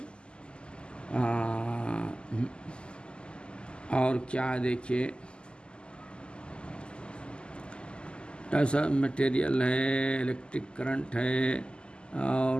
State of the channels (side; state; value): right; late; 0.050 ms